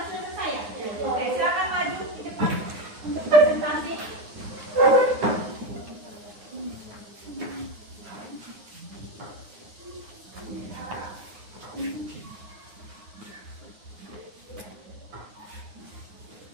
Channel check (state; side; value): late; left; 9.7 ms